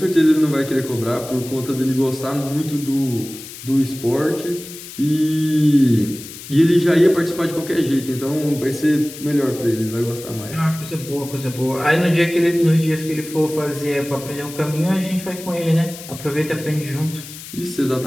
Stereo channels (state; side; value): noise; left; hiss, 14 dB below the sound